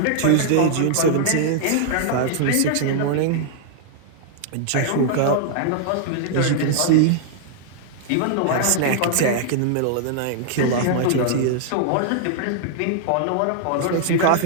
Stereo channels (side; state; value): both; different; correlation -0.01